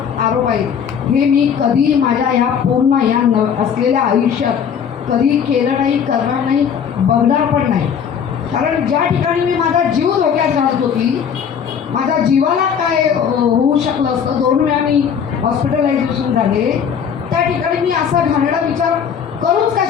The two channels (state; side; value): quieter; right; 7.6 dB